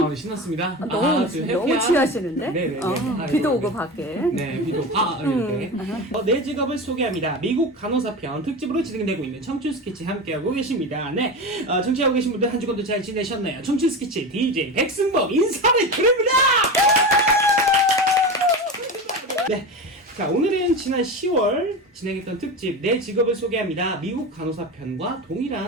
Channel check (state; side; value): normal; both; correlation 0.25